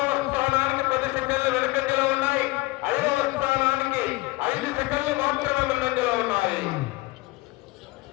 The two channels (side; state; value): right; quieter; 21.3 dB